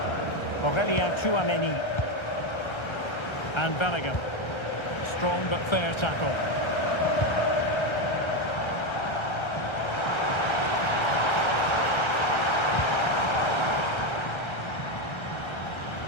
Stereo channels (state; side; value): late; right; 1.3 ms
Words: Aurélien Tchouameni. And Bellingham. Strong but fair tackle.